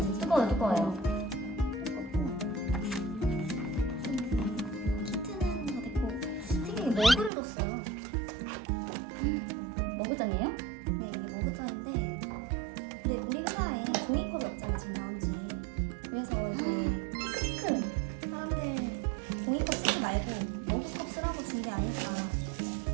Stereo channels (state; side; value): drops out; left; at 7.3 s